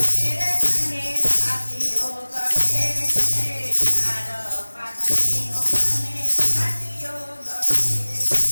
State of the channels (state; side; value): inverted; both; correlation -1.00